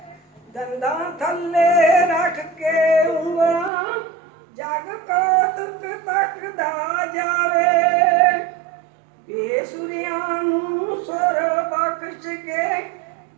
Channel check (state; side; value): drops out; left; at 3.7 s